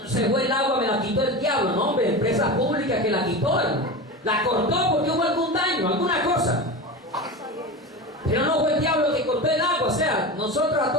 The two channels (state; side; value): normal; both; correlation 0.26